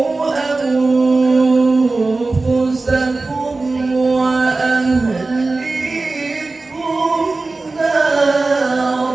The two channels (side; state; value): left; quieter; 3.5 dB